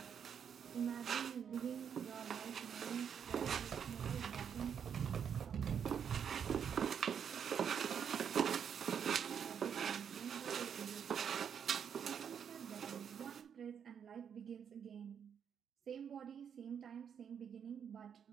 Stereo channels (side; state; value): left; quieter; 7.8 dB